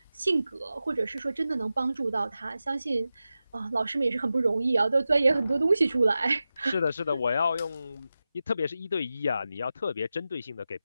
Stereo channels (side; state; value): both; inverted; correlation -0.93